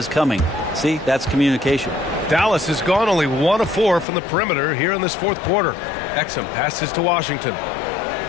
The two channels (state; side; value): drops out; right; at 4.0 s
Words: coming. See, that's communication. Dallas has gone only 1 of 4 from the perimeter here in this fourth quarter. Exum passes to Washington.